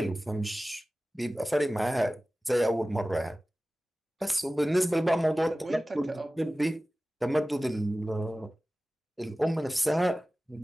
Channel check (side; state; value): both; normal; correlation 0.97